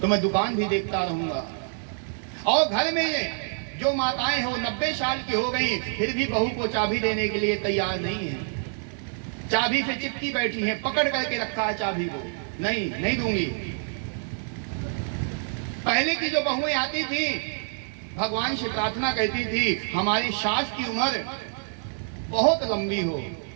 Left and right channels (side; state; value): left; silent; digital silence